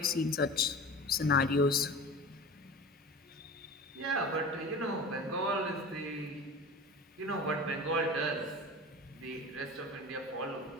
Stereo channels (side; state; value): both; normal; correlation 0.34